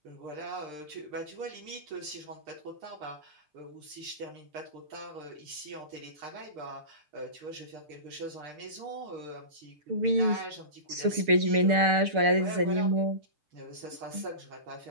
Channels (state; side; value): late; left; 6.6 ms